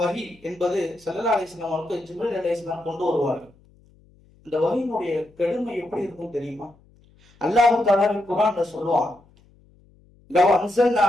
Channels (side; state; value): left; noise; hum, 30 dB below the sound